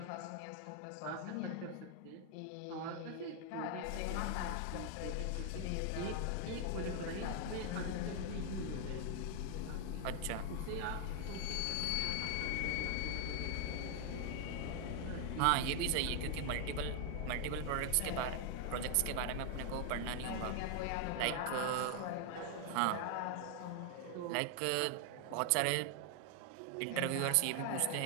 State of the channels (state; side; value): different; both; correlation 0.00